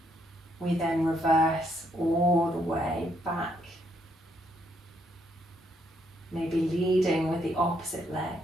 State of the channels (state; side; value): normal; both; correlation 0.73